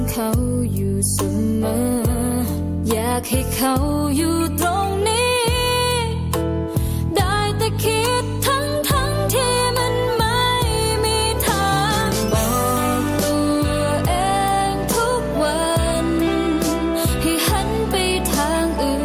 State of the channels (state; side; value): identical; both; correlation 1.00